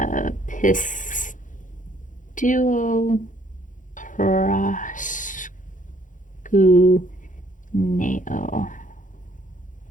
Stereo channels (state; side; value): late; right; 0.38 ms